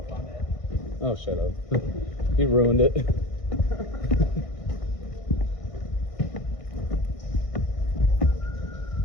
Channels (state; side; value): late; right; 1.6 ms